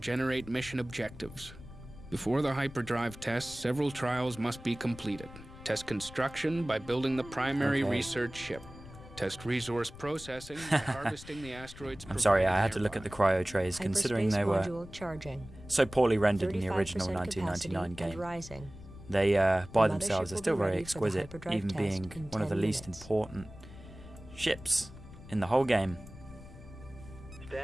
generate mission objectives. Before the hyperdrive tests, several trials must be completed. Test construction by building the primary research ship. Test resource processing by harvesting the asteroids. I'm sorry, I had to look at the cryo trays, considering they were so poorly rendered in the original 1999 game. They, by themselves, are still very exquisite, even being one of the least important ships in the whole game.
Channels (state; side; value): noise; left; rumble, 16 dB below the sound